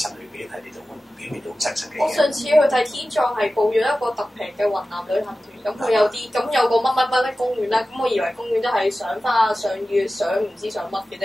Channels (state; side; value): normal; both; correlation 0.95